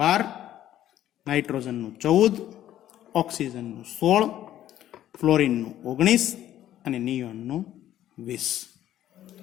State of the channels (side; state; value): right; quieter; 12.3 dB